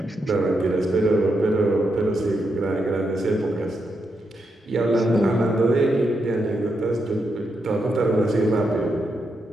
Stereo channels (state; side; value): normal; both; correlation 0.83